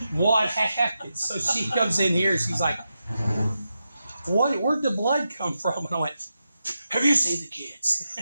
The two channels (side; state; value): both; inverted; correlation -0.88